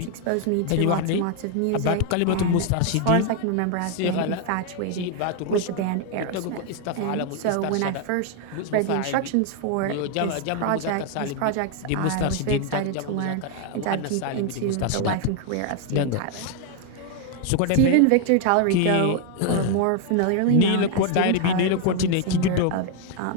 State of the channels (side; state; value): both; different; correlation 0.00